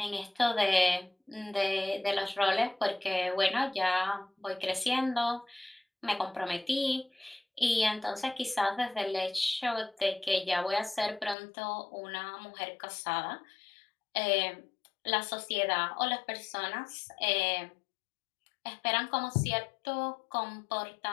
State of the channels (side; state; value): right; drops out; at 11.4 s